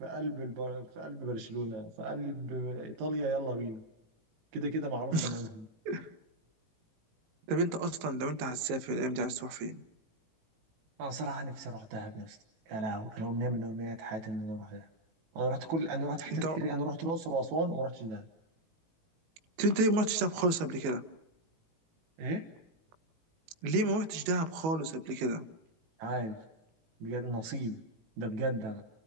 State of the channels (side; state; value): left; late; 19 ms